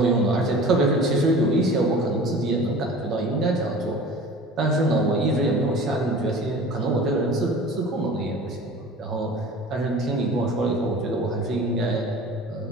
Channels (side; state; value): both; normal; correlation 0.40